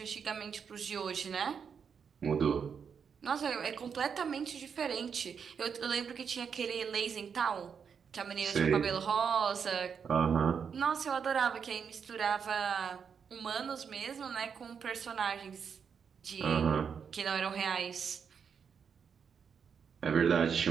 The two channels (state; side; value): quieter; left; 6.7 dB